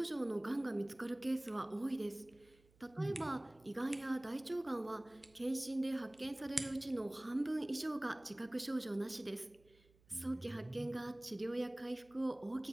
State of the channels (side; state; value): right; noise; hum, 29 dB below the sound